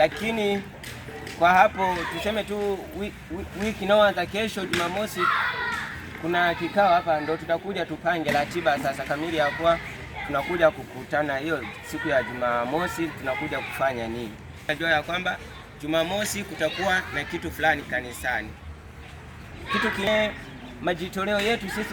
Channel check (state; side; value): identical; both; correlation 1.00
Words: kwa hapo tuseme tu wiki inayoanza kesho Jumamosi kuna kikao hapa, ndo tutakuja tupange ratiba sasa kamili ya kuwa tunakuja kukutana hiyo siku ya Jumamosi tunakuja kufanya nini. Najua ya kwamba Jumamosi kutakuwa na kitu fulani kanisani, kitu kile majitoleo yetu